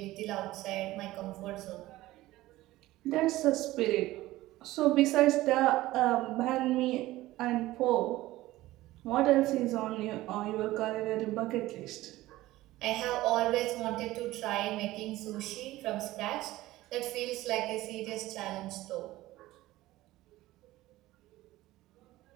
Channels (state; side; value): quieter; left; 17.0 dB